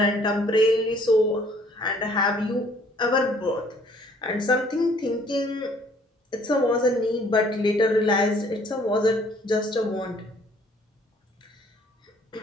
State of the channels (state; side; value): normal; both; correlation 0.59